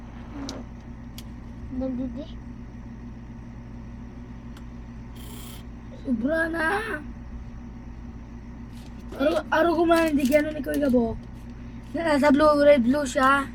Nandidi. Sobra na. Arugon mo na hindi gano'n ni Kuya Gabo. Nasa red blue siya.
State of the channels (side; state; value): both; identical; correlation 1.00